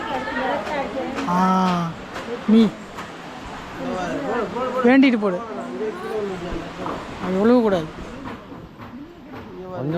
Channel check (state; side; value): identical; both; correlation 1.00